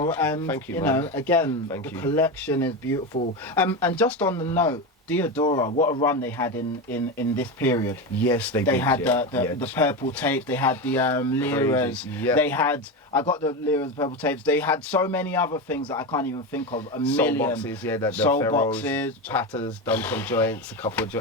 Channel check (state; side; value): normal; both; correlation 0.18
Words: And Thank you, you man. know, again, Thank the you. collection is beautiful. And just on the note, Diodora, what a run they had in this period. Yes, they They did. had yeah. the purple tapes. They had the Liras. Yeah. They had, I got the Liras purple tapes. They had so many other things that I can't even think of. A Soul million. boxes, yeah, the Soul Pharaohs, boxes. Patters, done some joints, a couple of